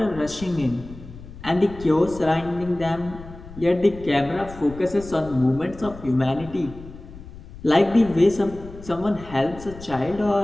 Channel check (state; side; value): noise; left; rumble, 16 dB below the sound